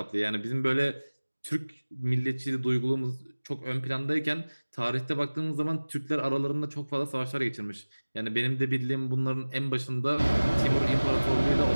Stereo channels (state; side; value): inverted; both; correlation -1.00